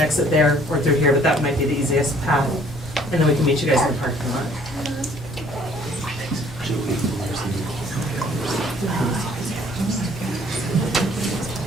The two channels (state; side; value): normal; both; correlation 0.58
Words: exit there or through here, but that might be the easiest path. And then we can meet you guys in the parking lot.